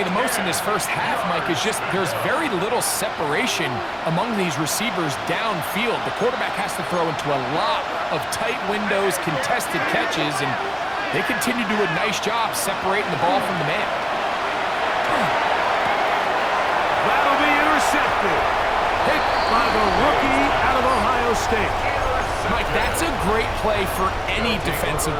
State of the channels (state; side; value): identical; both; correlation 1.00